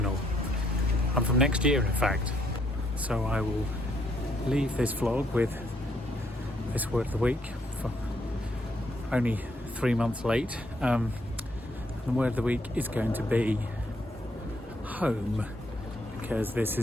I'm from next year, in fact. So I will leave this vlog with this word of the week, for only 3 months late. The word of the week is going to be home, because this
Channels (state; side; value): normal; both; correlation 0.71